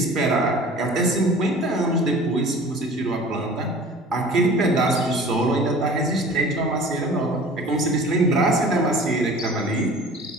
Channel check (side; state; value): both; normal; correlation 0.44